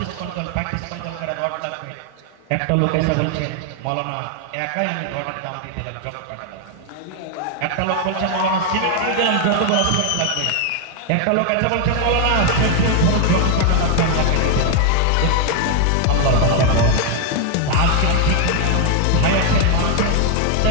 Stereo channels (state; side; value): different; both; correlation 0.00